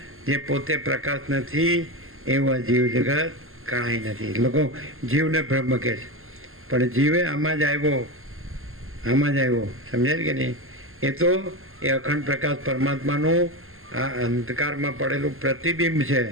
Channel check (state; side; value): late; left; 0.61 ms